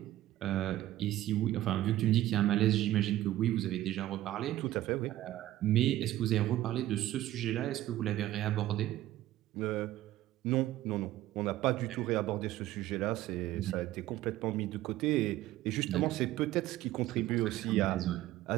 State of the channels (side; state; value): left; quieter; 14.7 dB